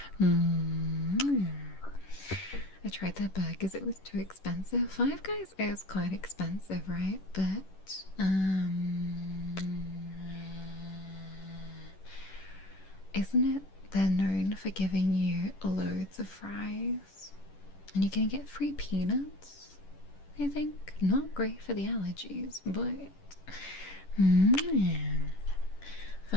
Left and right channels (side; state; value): right; late; 11 ms